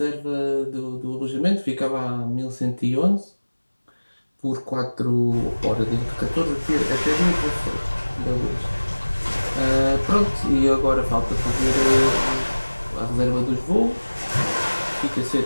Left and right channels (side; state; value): both; inverted; correlation -1.00